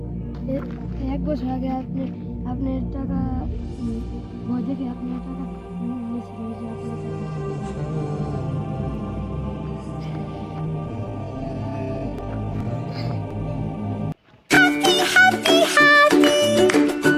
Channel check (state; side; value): identical; both; correlation 1.00